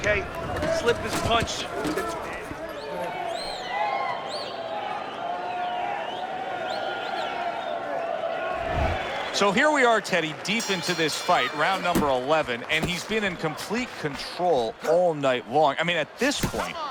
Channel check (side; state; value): both; identical; correlation 1.00